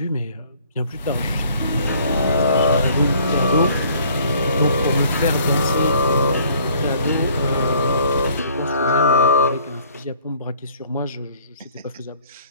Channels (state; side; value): inverted; both; correlation -0.57